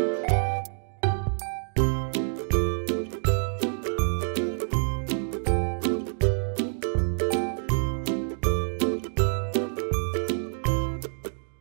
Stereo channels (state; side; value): silent; left; digital silence